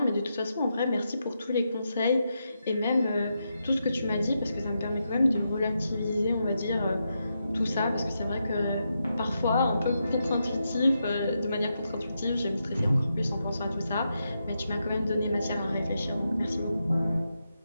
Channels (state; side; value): inverted; both; correlation -0.85